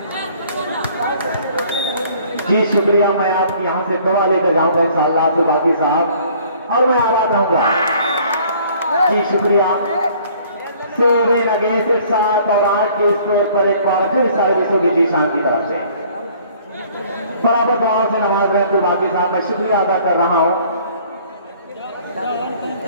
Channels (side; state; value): both; inverted; correlation -0.56